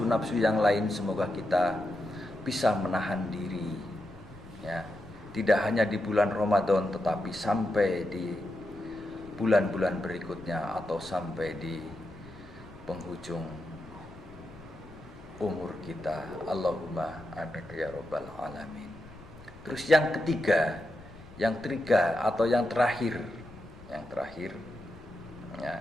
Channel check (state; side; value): noise; left; rumble, 21 dB below the sound